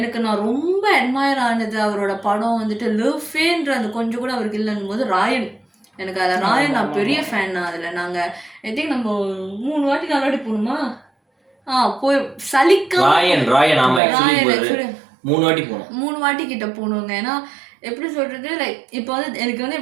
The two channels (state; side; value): drops out; left; at 14.0 s